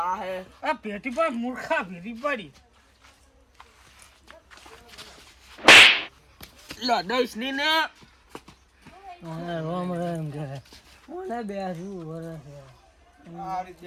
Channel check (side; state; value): both; identical; correlation 1.00